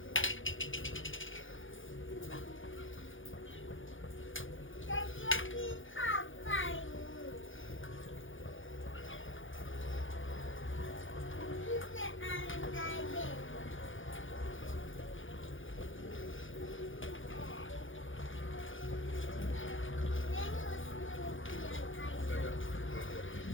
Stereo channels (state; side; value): late; right; 0.57 ms